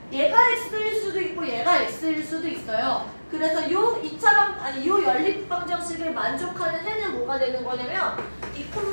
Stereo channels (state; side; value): inverted; both; correlation -1.00